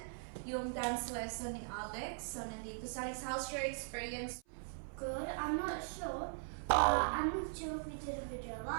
yung dance lesson ni Alex. So nandito sa Alex, how's your experience? Good. I'm not sure if we did a video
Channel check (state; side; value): silent; left; 51 dB below the other